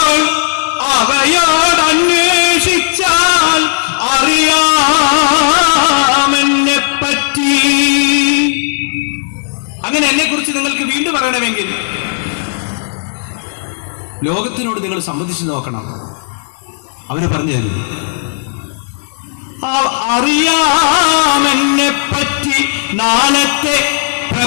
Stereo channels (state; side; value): silent; right; digital silence